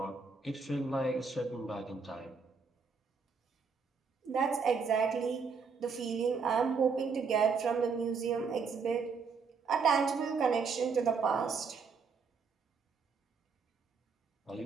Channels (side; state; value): left; quieter; 5.3 dB